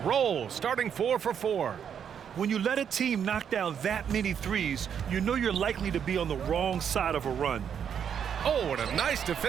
starting 4 for 4. When you let a team knock down that many threes, you know you're likely to be on the wrong side of a run. Oh, and a nice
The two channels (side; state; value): left; quieter; 8.1 dB